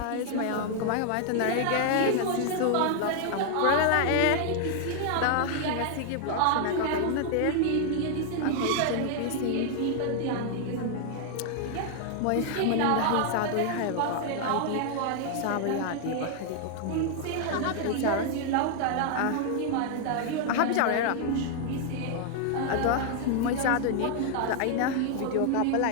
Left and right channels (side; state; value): both; different; correlation 0.00